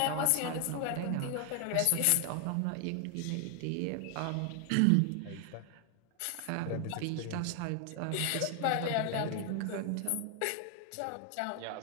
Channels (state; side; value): different; both; correlation 0.00